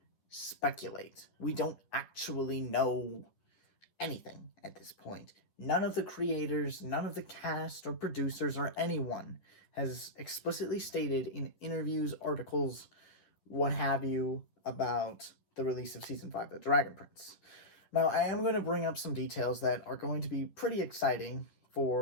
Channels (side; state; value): right; late; 10 ms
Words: speculate. We don't actually know anything at this point. None of the creators, none of the cast or producers or anyone has explicitly stated in interviews, articles, what have you, about the release of Season 5 of The Dragon Prince. Now, I am going to bring up some details that are going to be pretty exciting